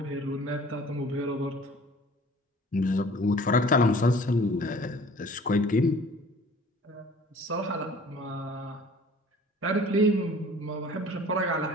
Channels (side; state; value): both; normal; correlation 0.49